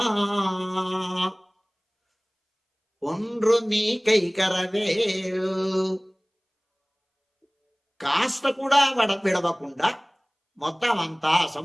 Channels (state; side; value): identical; both; correlation 1.00